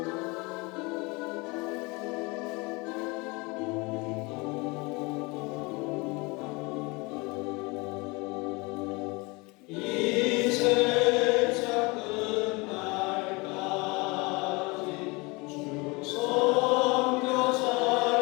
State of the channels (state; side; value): quieter; right; 26.4 dB